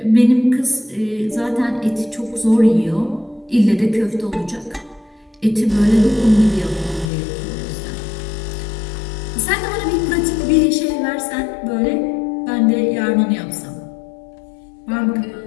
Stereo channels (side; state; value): right; drops out; at 7.1 s